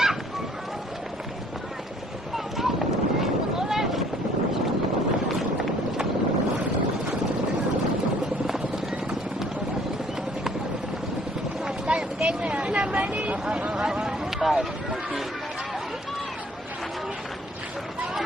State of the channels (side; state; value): right; noise; hum, 29 dB below the sound